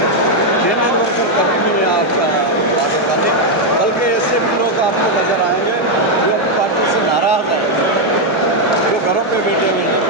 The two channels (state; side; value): normal; both; correlation 0.01